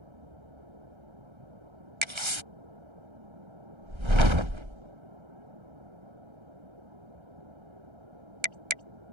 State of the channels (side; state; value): left; late; 1.3 ms